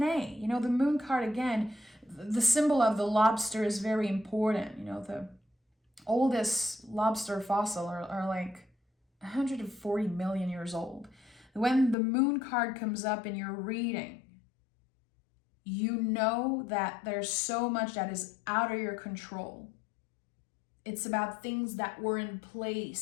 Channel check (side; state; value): right; drops out; at 12.0 s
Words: You know, the moon card, again, the symbol of the lobster is very important. You know, the oldest lobster fossil are like 140 million years old. When the moon card comes up in your reading, you know that there's so much that is out of your control. It's about things that were in place,